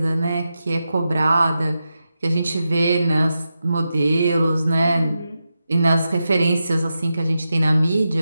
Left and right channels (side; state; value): both; inverted; correlation -0.89